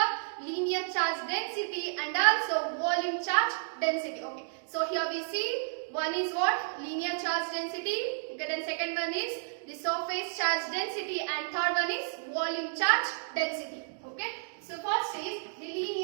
linear charge density, and also volume charge density. Okay. So here we see one is what? Linear charge density. Okay, then second one is the surface charge density, and third one is volume charge density. Okay. So first is the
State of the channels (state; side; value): silent; left; digital silence